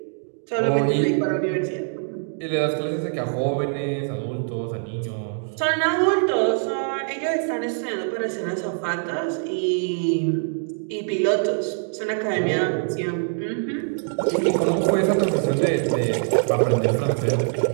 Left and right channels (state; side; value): silent; left; digital silence